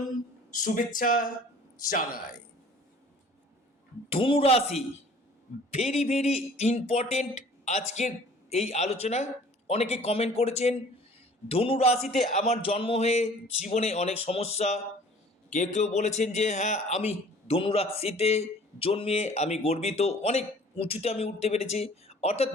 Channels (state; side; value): normal; both; correlation 0.50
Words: শুভেচ্ছা জানাই। ধনুরাশি ভেরি ভেরি ইম্পর্টেন্ট আজকের এই আলোচনা। অনেকে কমেন্ট করেছেন ধনুরাশিতে আমার জন্ম হয়ে জীবনে অনেক সমস্যা। কেউ কেউ বলেছেন যে হ্যাঁ, আমি ধনুরাশিতে জন্মে আমি গর্বিত, অনেক উঁচুতে আমি উঠতে পেরেছি। অর্থাৎ